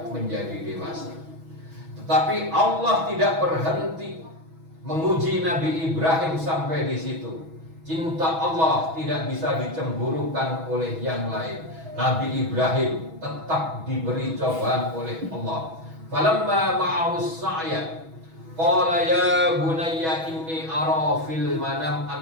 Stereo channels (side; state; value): left; late; 6.2 ms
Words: menjadi dewasa. Tetapi Allah tidak berhenti menguji Nabi Ibrahim sampai di situ. Cinta Allah tidak bisa dicemburukan oleh yang lain. Nabi Ibrahim tetap diberi cobaan oleh Allah. Falamma ma'ahus sa'ya qala ya bunayya inni ara fil manam